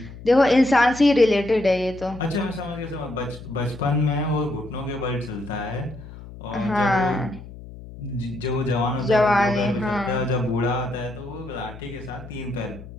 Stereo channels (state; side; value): noise; left; hum, 15 dB below the sound